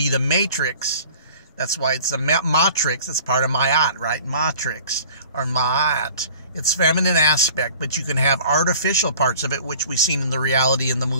the Matrix. That's why it's a matrix. It's part of Ma'at, right? Matrix or Ma'at. It's feminine aspect, but you can have artificial parts of it, which we've seen in the reality in the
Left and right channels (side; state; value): both; inverted; correlation -0.47